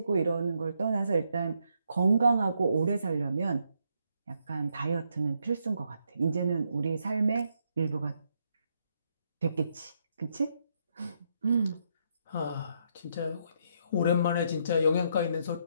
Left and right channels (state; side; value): inverted; both; correlation -0.76